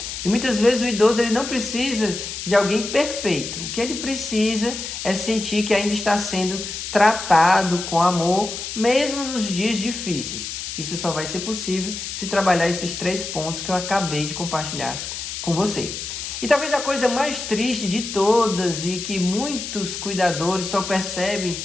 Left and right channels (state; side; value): noise; left; hiss, 7 dB below the sound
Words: E muitas vezes o idoso ele não precisa de alguém perfeito. O que ele precisa é sentir que ainda está sendo tratado com amor, mesmo nos dias difíceis. Isso só vai ser possível se trabalhar esses 3 pontos que eu acabei de compartilhar com você. E talvez a coisa mais triste de todas e que muitos cuidadores só percebem